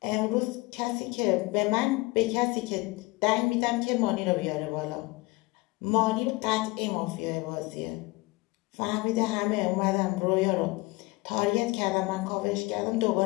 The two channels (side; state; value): right; quieter; 23.2 dB